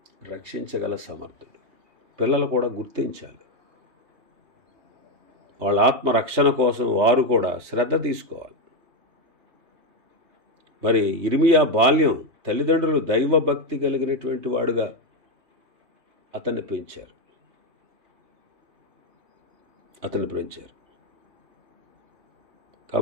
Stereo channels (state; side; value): late; left; 3.3 ms